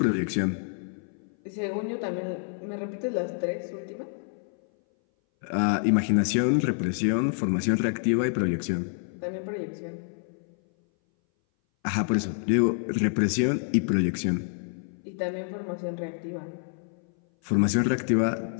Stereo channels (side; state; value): right; silent; 58 dB below the other